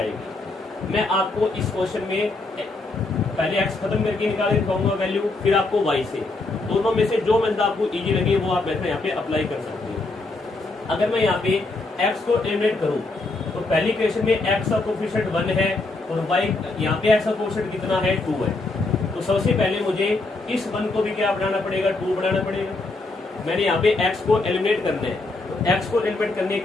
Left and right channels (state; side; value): quieter; right; 3.3 dB